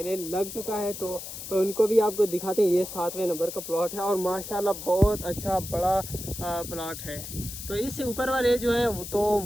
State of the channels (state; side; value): noise; left; hiss, 10 dB below the sound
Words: लग चुका है, तो उनको भी आपको दिखाते हैं। ये 7वें नंबर का प्लॉट है और माशाल्लाह बहुत अच्छा बड़ा प्लॉट है। तो इससे ऊपर वाले जो है